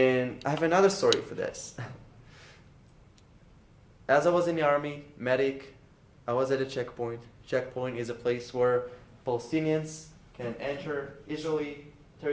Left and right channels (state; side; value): identical; both; correlation 1.00